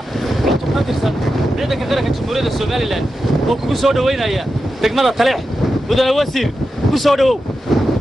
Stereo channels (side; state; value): both; normal; correlation 0.90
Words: عطوا كاترسن عندك غيرك الجمهورية الصومالي لان وكو سو دوينايا دغمada taleex mudane wasiir ku soo dhawow